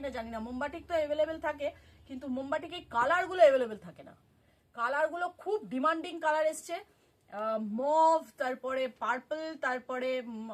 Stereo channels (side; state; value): both; identical; correlation 1.00